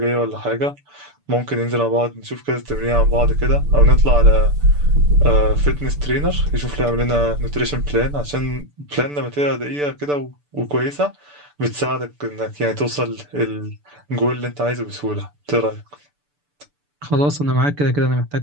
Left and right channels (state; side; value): late; left; 6.9 ms